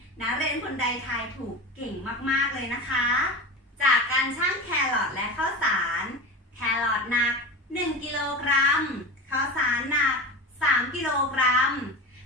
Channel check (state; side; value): normal; both; correlation 0.28